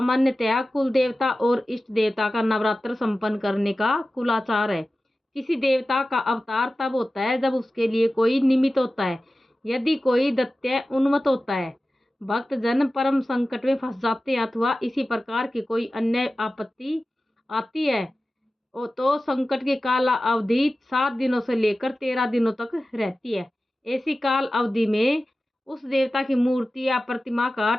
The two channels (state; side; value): normal; both; correlation 0.95